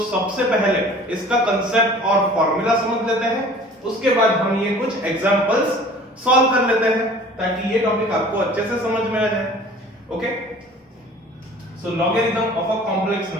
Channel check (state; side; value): normal; both; correlation 0.47